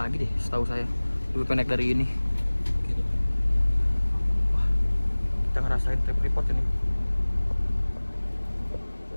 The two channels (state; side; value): inverted; both; correlation -1.00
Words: deh, setahu saya. Lebih pendek dari ini. Gitu. Wah, kita ngerasain trip report ini.